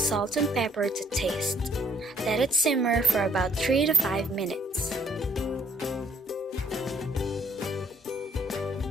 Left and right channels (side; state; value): both; normal; correlation 0.64